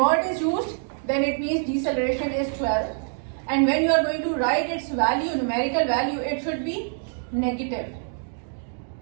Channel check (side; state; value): left; silent; digital silence